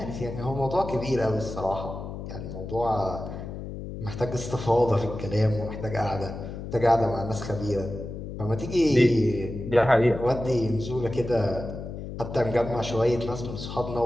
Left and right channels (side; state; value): left; noise; hum, 8 dB below the sound